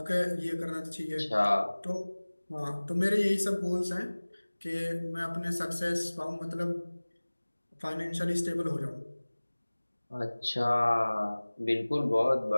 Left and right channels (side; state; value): both; inverted; correlation -1.00